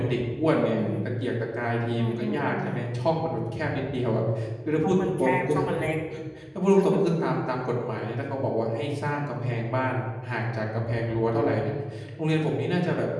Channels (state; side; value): identical; both; correlation 1.00